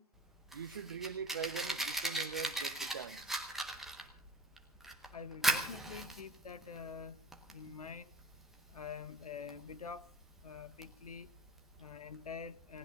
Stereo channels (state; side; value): normal; both; correlation 0.37